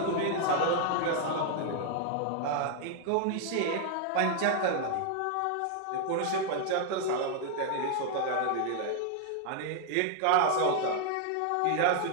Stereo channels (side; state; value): both; different; correlation 0.00